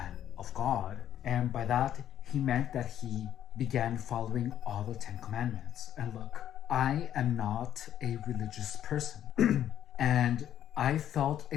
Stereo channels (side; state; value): right; quieter; 10.7 dB